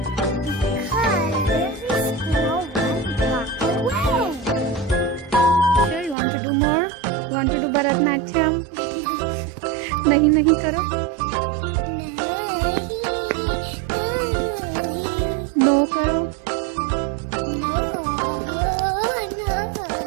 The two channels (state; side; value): drops out; left; at 6.2 s